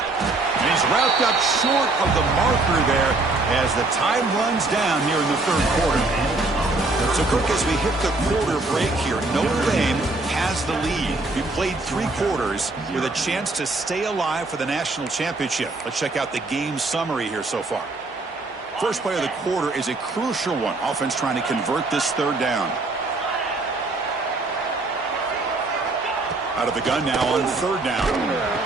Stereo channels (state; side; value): quieter; left; 3.2 dB